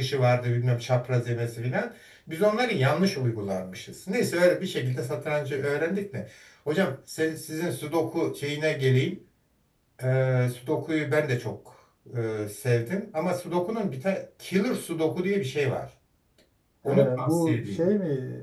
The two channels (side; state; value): both; identical; correlation 1.00